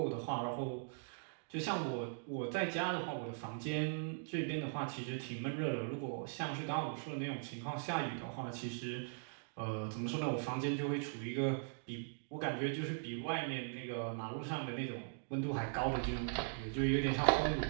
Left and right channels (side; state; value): left; silent; digital silence